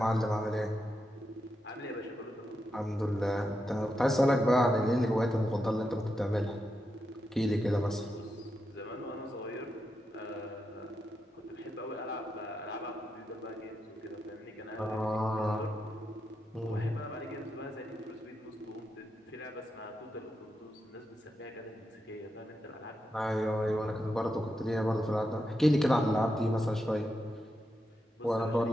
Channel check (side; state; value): both; normal; correlation 0.86